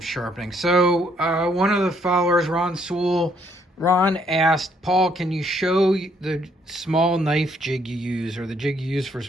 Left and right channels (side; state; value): both; normal; correlation 0.68